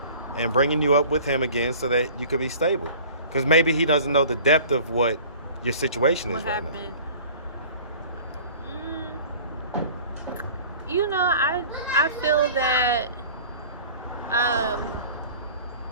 and bringing you up with him again so that you could be stable. Because maybe he doesn't know the depth of what your situation is right now. You know, I feel that I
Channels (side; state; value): both; inverted; correlation -0.45